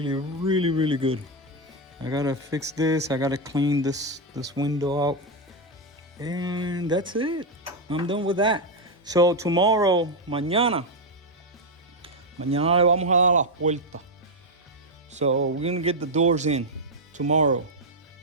really, really good. I gotta fix this. I gotta clean this window out. And that's it. I'm done with that. So tomorrow, mañana le vamos a dar las puertas. So we're gonna get the doors in tomorrow.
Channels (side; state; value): both; normal; correlation 0.04